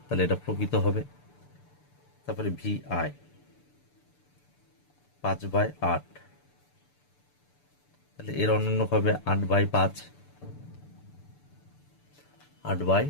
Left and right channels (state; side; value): late; right; 6.9 ms